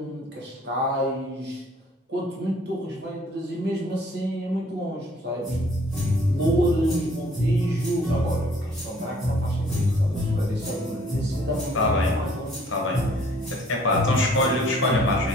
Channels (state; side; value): normal; both; correlation 0.58